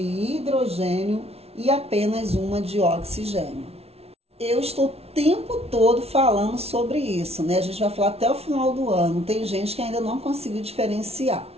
e apenas uma de oxigênio. Eu estou o tempo todo falando sobre isso, né? A gente vai falar até o final do ano. Tem gente que ainda não conseguiu diferenciar.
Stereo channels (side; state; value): left; late; 0.30 ms